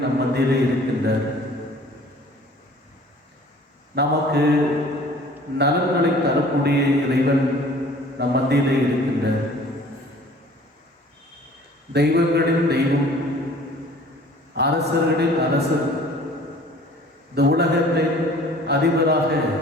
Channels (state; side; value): normal; both; correlation 0.50